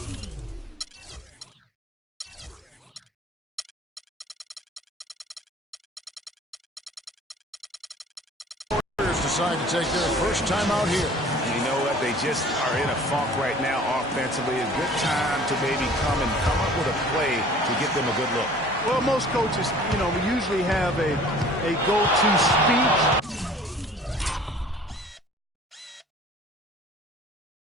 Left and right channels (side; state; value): both; normal; correlation 0.49